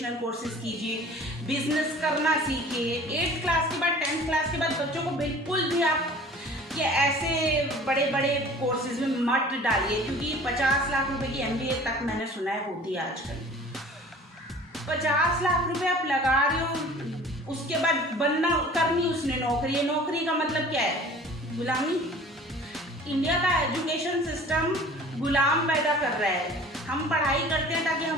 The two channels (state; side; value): normal; both; correlation 0.46